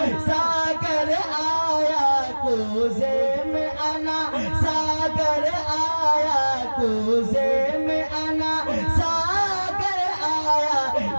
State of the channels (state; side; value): inverted; both; correlation -1.00